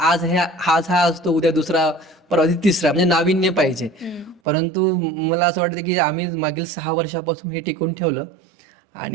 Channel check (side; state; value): left; drops out; at 4.4 s